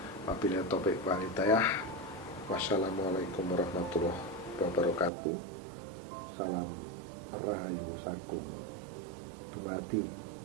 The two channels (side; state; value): left; drops out; at 5.1 s